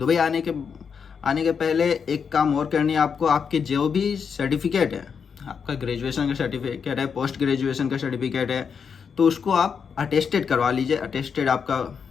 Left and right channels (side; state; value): right; quieter; 6.4 dB